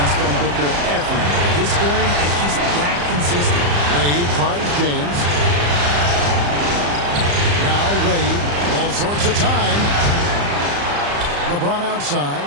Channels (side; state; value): left; late; 35 ms